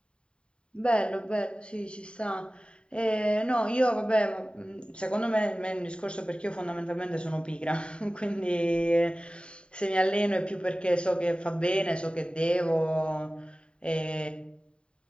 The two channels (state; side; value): late; right; 0.053 ms